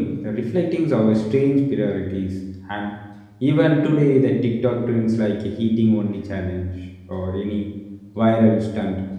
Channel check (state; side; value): identical; both; correlation 1.00